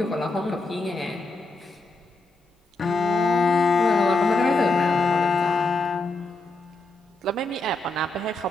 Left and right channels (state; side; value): quieter; right; 3.1 dB